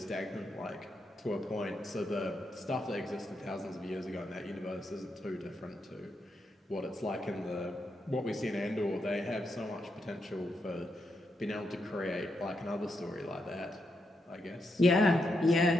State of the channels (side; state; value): both; normal; correlation 0.82